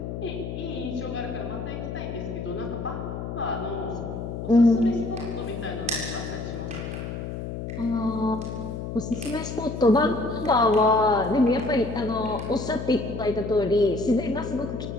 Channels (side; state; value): left; noise; hum, 6 dB below the sound